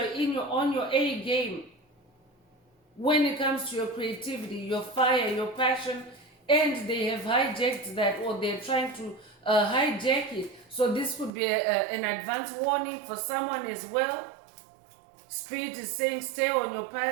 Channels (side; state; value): left; drops out; at 11.3 s